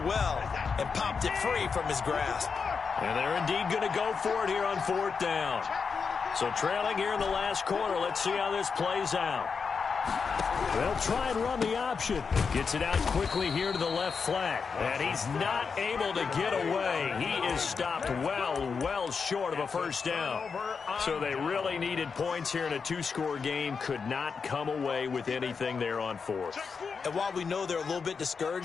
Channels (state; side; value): quieter; right; 5.5 dB